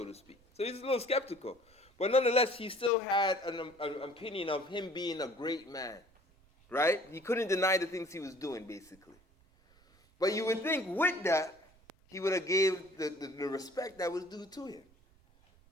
to speak? So he's a little skeptical. But nonetheless, he still had an opinion of him being a great man, right? He couldn't deny the things he was doing, basically. But you would think with that, he would have gave the respect that was due to him.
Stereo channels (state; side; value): noise; right; rumble, 30 dB below the sound